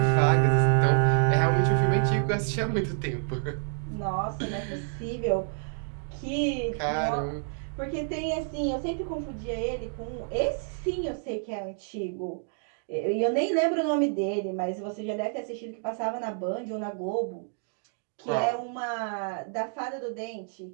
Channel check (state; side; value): silent; left; 59 dB below the other